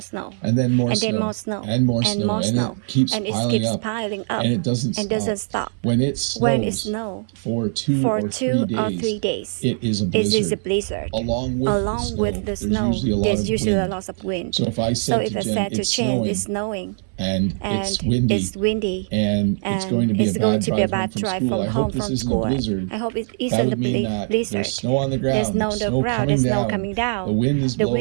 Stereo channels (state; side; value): silent; left; 64 dB below the other